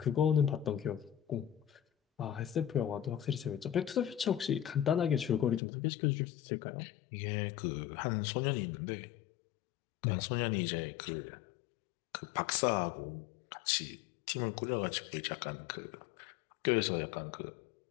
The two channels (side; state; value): right; drops out; at 5.6 s